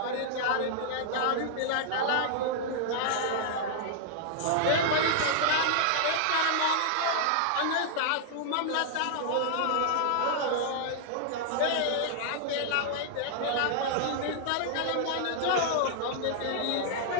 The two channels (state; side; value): different; both; correlation -0.01